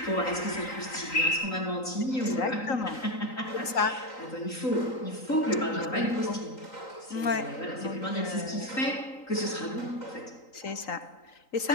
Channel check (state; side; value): late; right; 3.9 ms